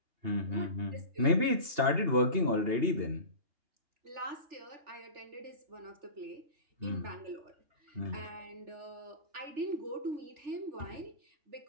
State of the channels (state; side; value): late; left; 2.8 ms